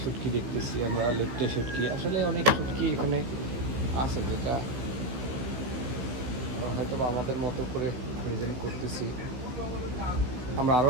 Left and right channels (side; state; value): left; late; 15 ms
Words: শুটকি দেখতেছি আমরা, লেপটে শুটকি, আসলে অনেক শুটকি এখানে আছে, যেটা হয়তো আমাদের মতো করে ওজন করতেছি। আমরা আরও